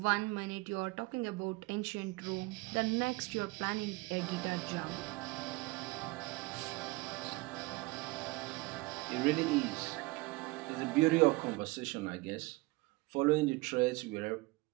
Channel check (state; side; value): quieter; left; 22.9 dB